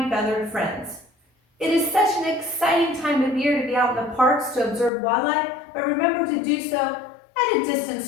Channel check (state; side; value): drops out; right; at 4.9 s